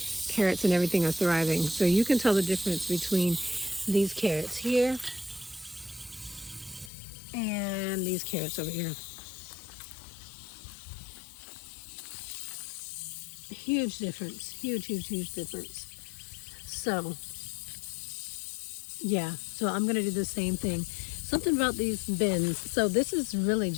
carrots and everything are thriving. So you can tell the difference between these carrots here and these carrots over here. Huge difference. Huge, huge, huge difference. So, yeah. So I'm going to do the same thing. Something about these bins. So this is really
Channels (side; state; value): right; drops out; at 6.9 s